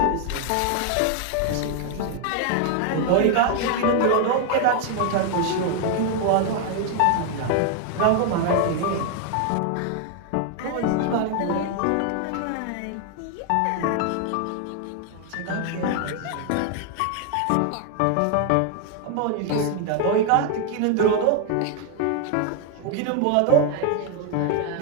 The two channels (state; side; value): different; both; correlation 0.00